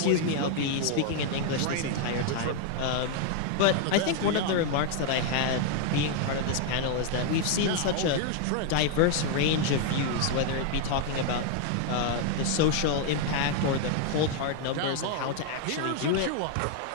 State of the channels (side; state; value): both; different; correlation 0.00